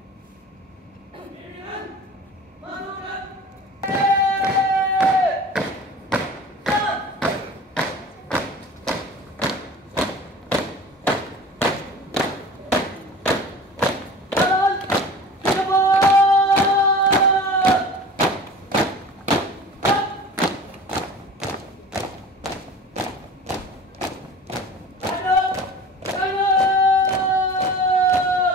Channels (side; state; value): both; normal; correlation 0.39